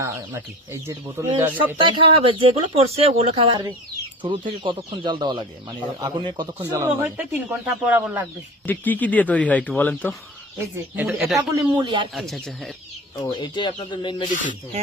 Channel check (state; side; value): normal; both; correlation 0.34